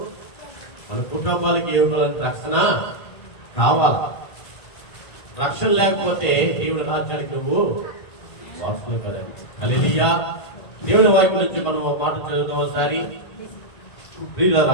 మన కుటుంబాలకి ఏమిటి రక్షణ కావాలి. రక్షణ లేకపోతే దేవుని రాజ్యానికి నువ్వు వారసులు కదండి. హల్లెలూయా. దేవుని వాక్యం నుంచి మనం మాట చదువుతాం ఒకసారి.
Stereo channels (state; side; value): late; right; 1.9 ms